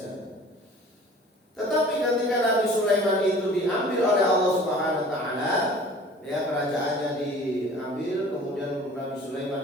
Tetapi ketika Nabi Sulaiman itu diambil oleh Allah Subhanahu wa taala, ya, kerajaannya diambil, kemudian Nabi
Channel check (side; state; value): both; normal; correlation 0.47